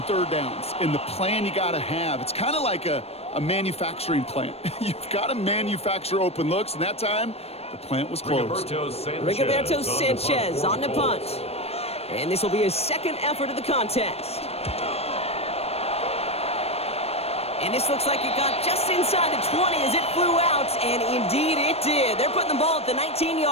3rd downs and the plan you got to have. It's kind of like a manufacturing plant. You've got to manufacture open looks, and that time the plant was closed. Rigoberto Sanchez on the punt. And this will be his 2nd effort of the contest. And this looks like it got just inside the 20 as it flew out, and indeed it did. They're putting the ball at the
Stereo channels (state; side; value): late; right; 0.29 ms